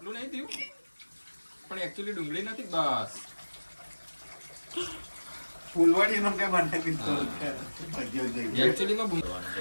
નહીં થયું, પણ એકચ્યુઅલી ડુંગળી નથી. બસ ફૂલવાડી નું કે બનાવી એકચ્યુઅલી માં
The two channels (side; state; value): both; inverted; correlation -1.00